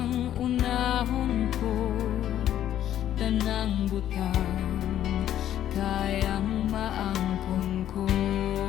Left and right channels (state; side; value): quieter; right; 11.4 dB